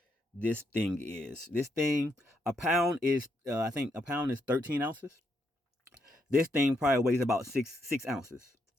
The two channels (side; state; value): both; normal; correlation 0.78